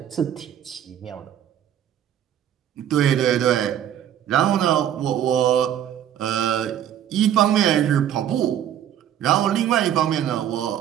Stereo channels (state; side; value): quieter; left; 10.5 dB